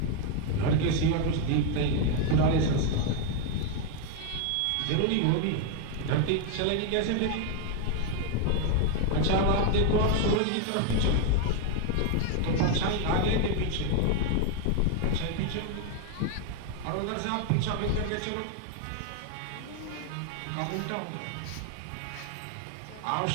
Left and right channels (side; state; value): both; different; correlation 0.00